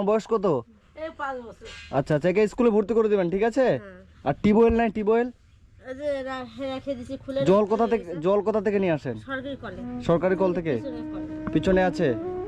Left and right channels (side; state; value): both; identical; correlation 1.00